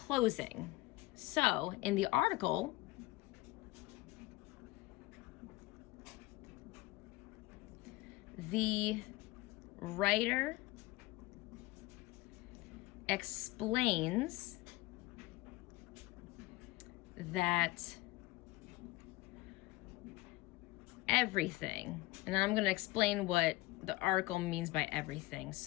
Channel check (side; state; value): right; quieter; 20.6 dB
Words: So in the article, the writer explains that everything, and I'm going to explain what the article means by everything.